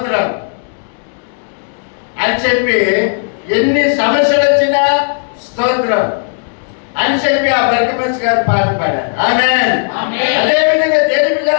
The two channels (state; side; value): silent; right; digital silence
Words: అని చెప్పి, ఎన్ని సమస్యలు వచ్చినా స్తోత్రం అని చెప్పి ఆ బర్గమస్ గారు పాట పాడారు. ఆమేన్. అదేవిధంగా దేవుని